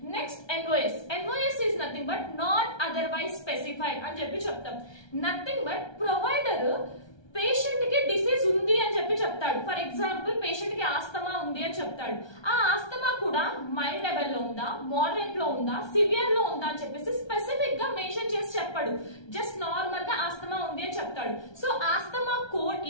Next NOS is nothing but not otherwise specified అని చెప్తాం. నథింగ్ బట్ ప్రొవైడర్ పేషెంట్ కి డిసీజ్ ఉంది అని చెప్తాడు. ఫర్ ఎగ్జాంపుల్ పేషెంట్ కి ఆస్తమా ఉంది అని చెప్తాడు. ఆ ఆస్తమా కూడా మైల్డ్ లెవెల్ లో ఉందా, మోడరేట్ లో ఉందా, సివియర్ లో ఉందా అని చెప్పేసి స్పెసిఫిక్ గా మెన్షన్ చేసి చెప్పాడు. జస్ట్ నార్మల్ గా ఆస్తమా ఉంది అని చెప్తాడు. So asthma code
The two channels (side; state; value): right; late; 1.3 ms